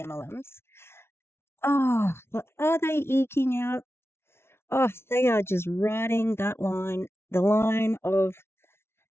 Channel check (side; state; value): right; late; 0.12 ms